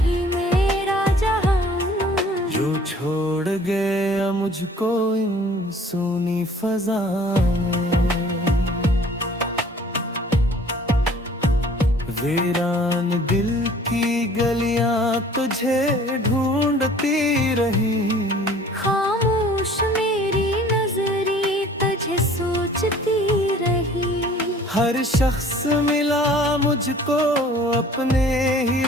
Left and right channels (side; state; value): both; normal; correlation 0.51